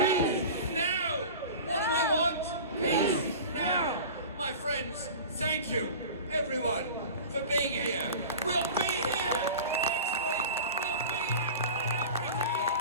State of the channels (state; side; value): inverted; both; correlation -0.35